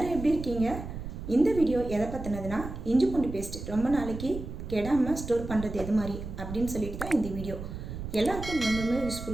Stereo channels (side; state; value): right; noise; rumble, 9 dB below the sound